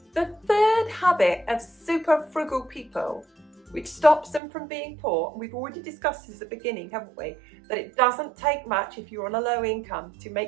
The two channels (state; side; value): drops out; left; at 4.4 s